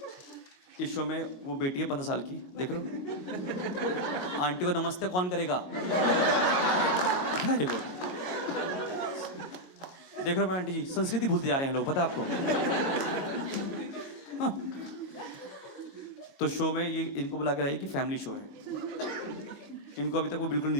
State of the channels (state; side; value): late; right; 22 ms